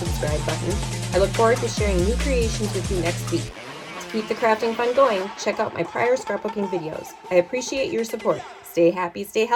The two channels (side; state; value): both; identical; correlation 1.00